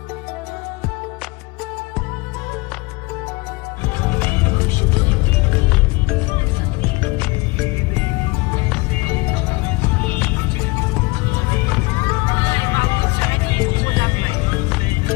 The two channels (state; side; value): quieter; right; 24.7 dB